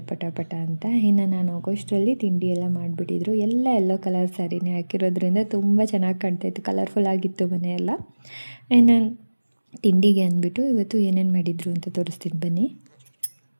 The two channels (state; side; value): inverted; both; correlation -1.00